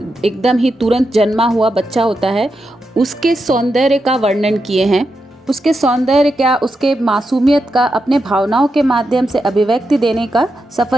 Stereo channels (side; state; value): both; normal; correlation 0.86